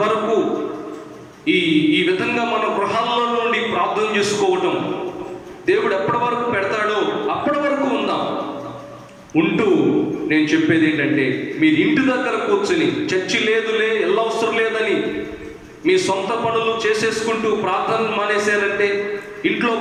వరకు ఈ విధంగా మన గృహాల్లో నుండి ప్రార్థన చేసుకోవటం దేవుడు ఎప్పటి వరకు పెడతాడో అప్పటి వరకు ఉందాం. ఉంటూ నేను చెప్పేది ఏంటంటే, మీరు ఇంటి దగ్గర కూర్చొని చర్చి లేదులే, అవసరం లేదని మీ సొంత పనులు చేసేసుకుంటూ ప్రార్థన మానేశారంటే, ఇంట్లో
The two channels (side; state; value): both; identical; correlation 1.00